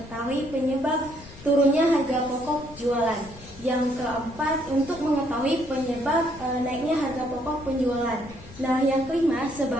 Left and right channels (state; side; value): noise; left; rumble, 19 dB below the sound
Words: penyebab turunnya harga pokok jualan. Yang keempat untuk mengetahui penyebab naiknya harga pokok penjualan. Nah, yang kelima